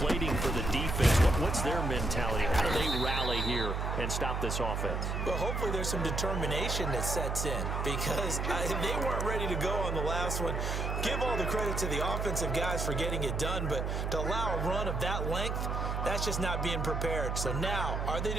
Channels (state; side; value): noise; right; hum, 1 dB below the sound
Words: for the defense, what's their mentality? How do they rally here and stop this offense? Well, hopefully there's some determination that sets in, because they weren't ready to go on the last one. Give all the credit to the offensive guys for getting it done, but to allow a run of that length, that's just not being prepared. So now, are they